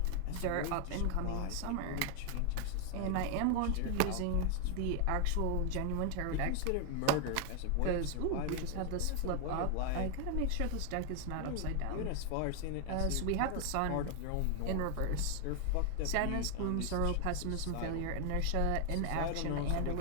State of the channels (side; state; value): both; different; correlation 0.00